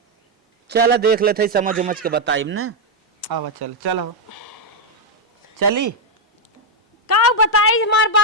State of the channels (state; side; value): normal; both; correlation 0.01